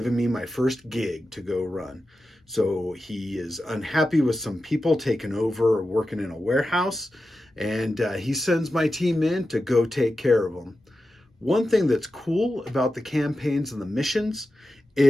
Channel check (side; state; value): both; normal; correlation 0.92